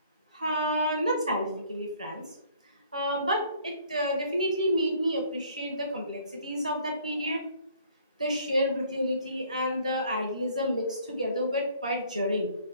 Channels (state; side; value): inverted; both; correlation -0.58